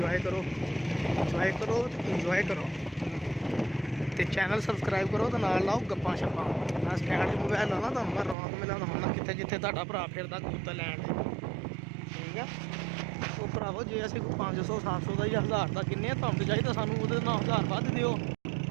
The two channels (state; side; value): drops out; left; at 8.3 s